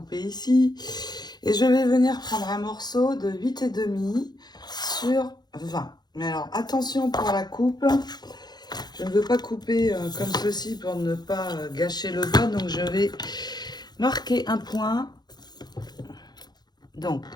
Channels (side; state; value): right; late; 0.20 ms